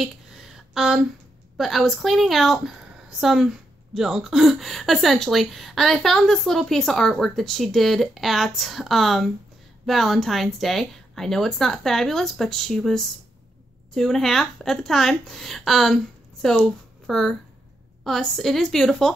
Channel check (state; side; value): normal; both; correlation 0.82